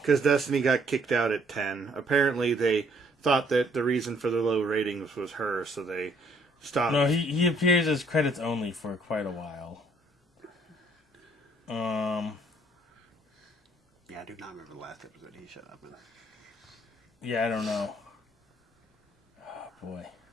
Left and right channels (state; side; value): normal; both; correlation 0.64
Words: because Destiny got kicked out at 10. Apparently, they thought that the reason for the low ratings was her, so they stopped. No, he appears as credits only for quite a while. Yeah, I do not remember the last episode he showed up in. Yeah, I don't know. Oh, boy.